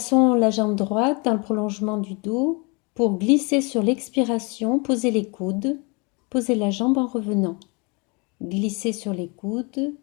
la jambe droite dans le prolongement du dos. Pour glisser sur l'expiration, posez les coudes, posez la jambe en revenant. Glissez sur les coudes,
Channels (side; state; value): right; quieter; 30.7 dB